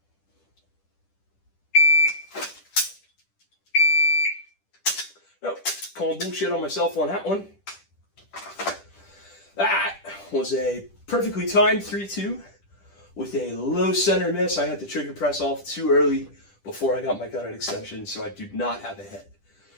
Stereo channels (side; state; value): right; late; 10 ms